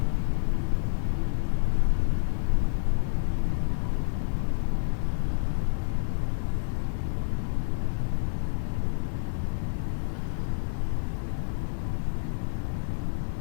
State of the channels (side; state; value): right; silent; digital silence